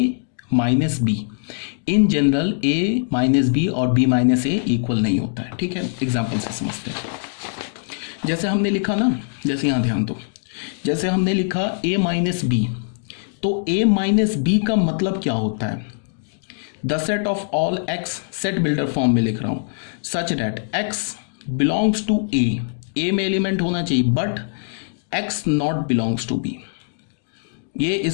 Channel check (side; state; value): right; silent; digital silence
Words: minus B. In general A minus B और बी माइनस ए इक्वल नहीं होता है। ठीक है, एग्जाम्पल से समझते हैं। जैसे हमने लिखा ना, जैसे यहाँ ध्यान दो, जैसे हमने लिखा ए माइनस बी, तो ए माइनस बी का मतलब क्या होता है, the set of all x, set builder form में लिख रहा हूं, such that x belongs to A में एलिमेंट होना चाहिए, but x not belongs to B. ये